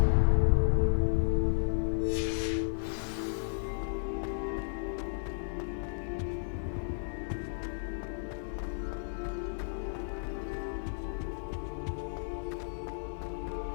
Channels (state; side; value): silent; right; digital silence